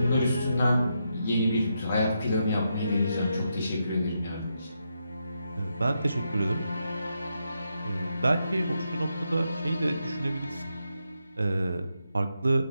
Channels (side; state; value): both; inverted; correlation -0.83